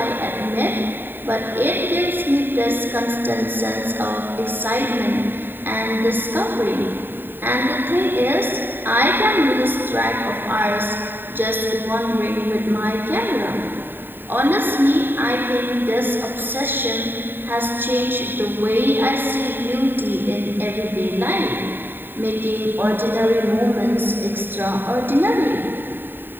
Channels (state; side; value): late; left; 0.094 ms